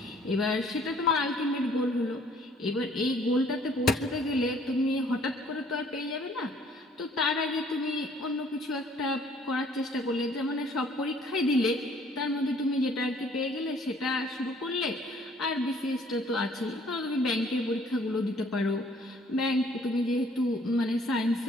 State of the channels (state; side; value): normal; both; correlation 0.59